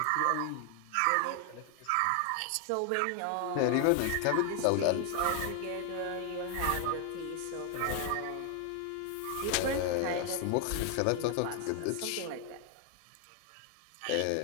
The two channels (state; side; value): different; both; correlation 0.00